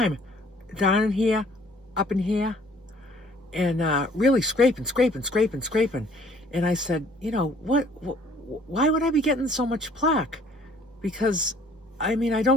down in here, up in here, and really scraping. And I said, why would I be getting so much plaque? Because, I mean, I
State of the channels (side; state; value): both; normal; correlation 0.58